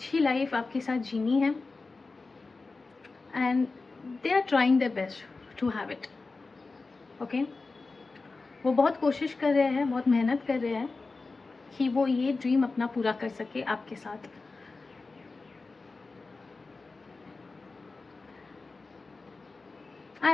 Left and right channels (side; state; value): right; quieter; 3.8 dB